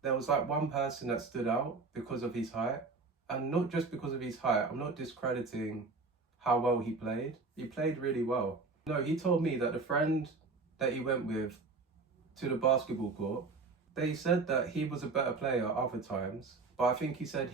there was like one person that stood out because of his height. And not just because of his height, I'm not discrediting how well he played. He played really well. No, he told me that the friend that he went with to the basketball court, they said that he was a better player other times, but I think he said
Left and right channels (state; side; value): quieter; left; 4.1 dB